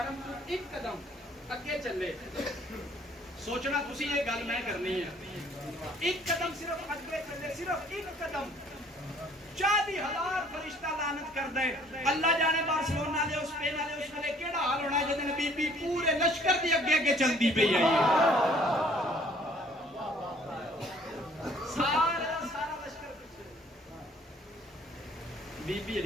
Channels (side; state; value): both; normal; correlation 0.58